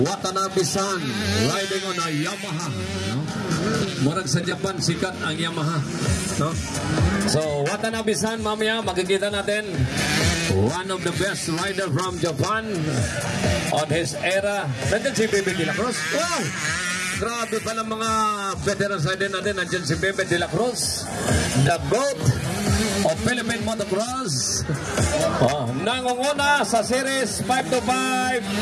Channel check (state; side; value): identical; both; correlation 1.00